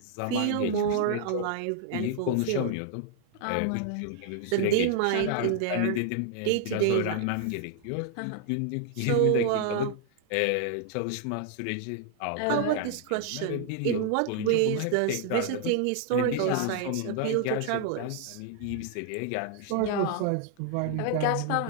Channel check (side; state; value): both; different; correlation 0.00